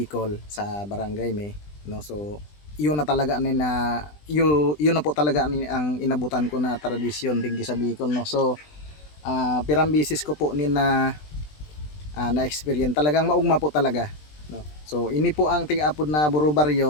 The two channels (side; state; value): right; late; 20 ms